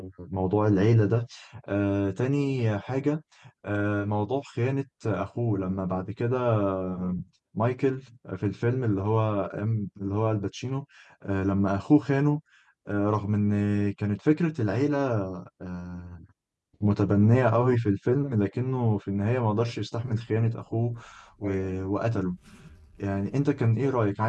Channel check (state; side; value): identical; both; correlation 1.00